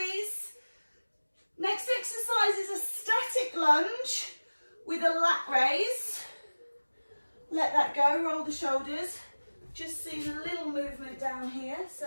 Next exercise is a static lunge with a lat raise. Let that go, roll the shoulders. Just seeing a little movement down here,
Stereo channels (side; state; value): both; inverted; correlation -1.00